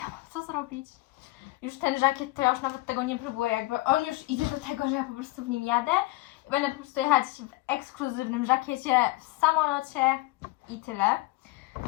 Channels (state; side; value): quieter; right; 20.2 dB